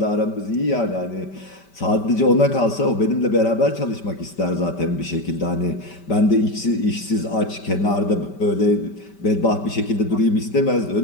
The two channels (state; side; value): late; right; 5.1 ms